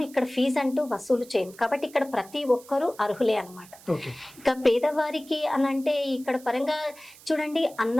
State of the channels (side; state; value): right; noise; hiss, 22 dB below the sound